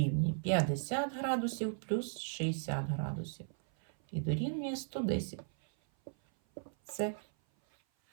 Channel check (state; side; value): silent; left; 54 dB below the other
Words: 50 градусів плюс 60 градусів. І дорівнює 110. Це.